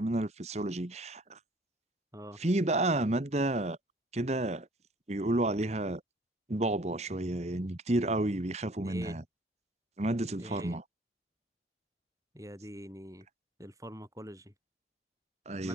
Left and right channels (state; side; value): normal; both; correlation 0.55